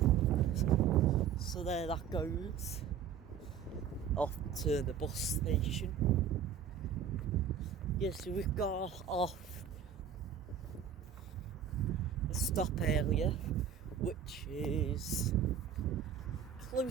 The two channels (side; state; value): left; quieter; 7.9 dB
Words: So there that goes. Off to the bus station. Yes, so we've got off a stop area, which is